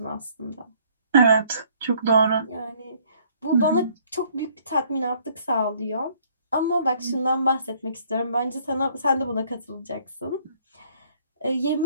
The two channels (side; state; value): both; inverted; correlation -0.62